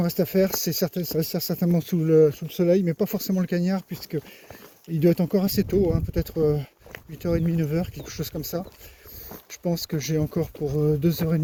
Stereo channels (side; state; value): both; identical; correlation 1.00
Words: reste à faire, c'est ça reste certainement sous le soleil, mais pas forcément le cagnard, puisque il doit être encore assez tôt, hein, peut-être 8h30, 9h, quelque chose comme ça. Je pense que j'ai encore pour